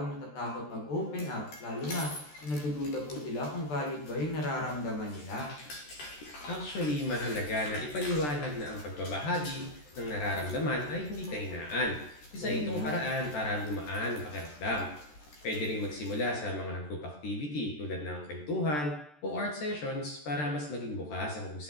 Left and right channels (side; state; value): right; late; 13 ms